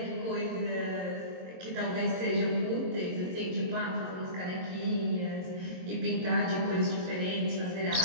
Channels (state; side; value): late; left; 22 ms